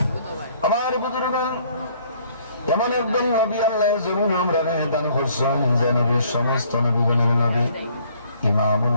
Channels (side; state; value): both; inverted; correlation -0.61